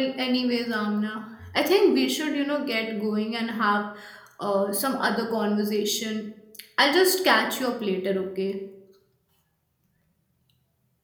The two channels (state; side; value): identical; both; correlation 1.00